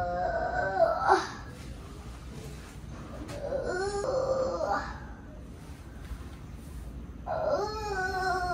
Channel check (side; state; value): both; identical; correlation 1.00